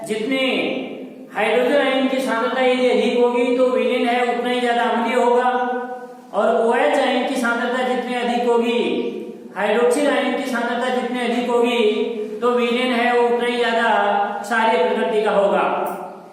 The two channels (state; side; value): identical; both; correlation 1.00